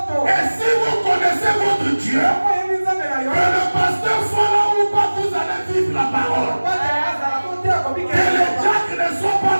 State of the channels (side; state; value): both; inverted; correlation -1.00